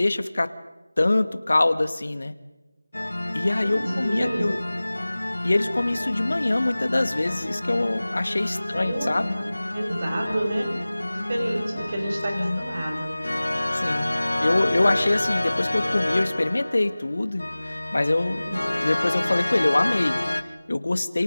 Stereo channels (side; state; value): both; inverted; correlation -0.99